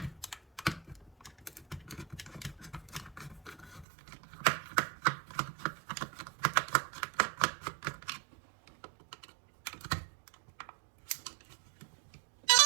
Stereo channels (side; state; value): left; drops out; at 3.9 s